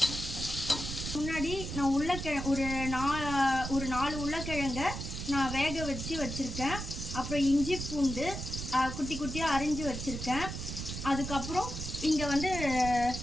முன்னாடி நான் ஒரு 4 உருளைக்கிழங்க நான் வேக வச்சுருக்கேன். அப்புறம் இஞ்சி பூண்டு குட்டி குட்டியாக அரிஞ்சு வச்சுருக்கேன். அதுக்கப்புறம் இங்கே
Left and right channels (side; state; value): right; noise; rumble, 6 dB below the sound